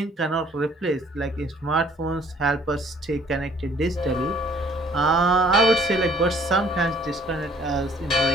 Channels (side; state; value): both; normal; correlation 0.58